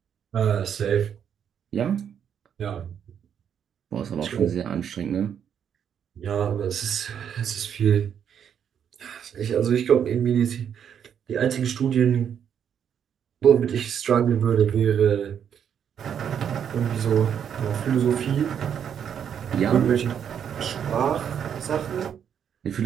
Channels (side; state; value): left; quieter; 8.4 dB